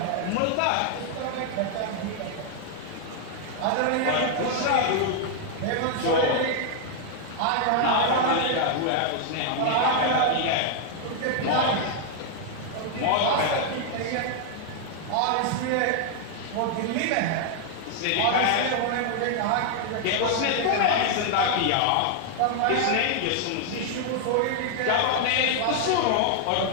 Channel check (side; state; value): both; different; correlation 0.00